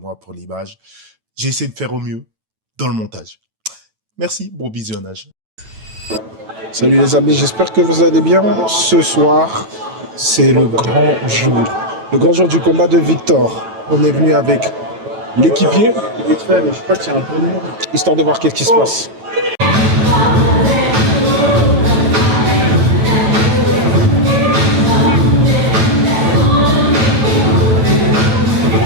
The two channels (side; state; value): left; late; 9.1 ms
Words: pour l'image. J'ai essayé de faire au mieux dans le montage. Merci, bon visionnage. Salut les amis, j'espère que vous allez bien. Ce soir, c'est le grand jour. Le grand jour du combat de Victor. On est venu avec l'équipier, vite fait, mais je crois que c'est un peu long, histoire de voir qu'est-ce qui se passe.